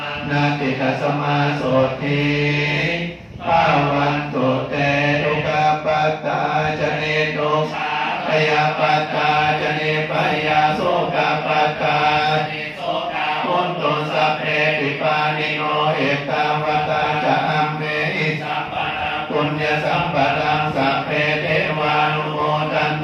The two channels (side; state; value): both; identical; correlation 1.00